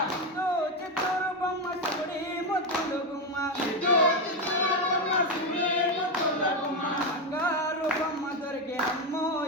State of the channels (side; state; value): both; normal; correlation 0.09